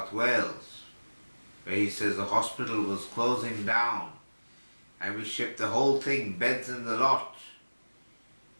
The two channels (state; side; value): inverted; both; correlation -1.00